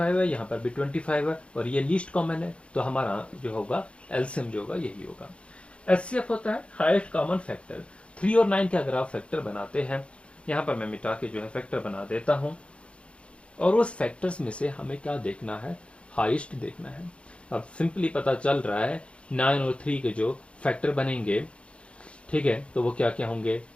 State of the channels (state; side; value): late; right; 0.059 ms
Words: है, यहाँ पर भी 25 है, और ये लीस्ट कॉमन है। तो हमारा जो होगा एलसीएम जो होगा यही होगा। एचसीएफ होता है हाईएस्ट कॉमन फैक्टर। 3 और 9 के अगर आप फैक्टर बनाते हैं, यहाँ पर मैं मिटा के जो है फैक्टर बना देता हूँ, और उस फैक्टर्स में से हमें क्या देखना है, हाईएस्ट देखना है। अब सिंपली पता चल रहा है 9 और 3 के जो फैक्टर बनेंगे, ठीक है, तो वो क्या क्या होंगे,